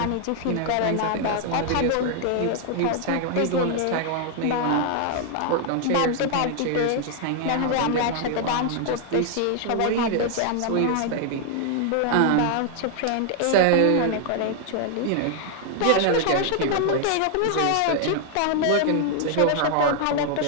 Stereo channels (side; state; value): both; different; correlation 0.00